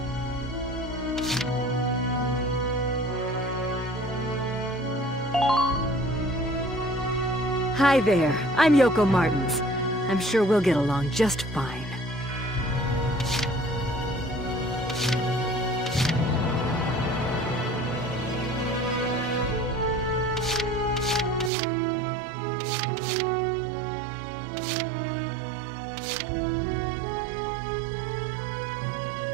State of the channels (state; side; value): drops out; left; at 21.5 s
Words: Hi there, I'm Yoko Martins. I'm sure we'll get along just fine.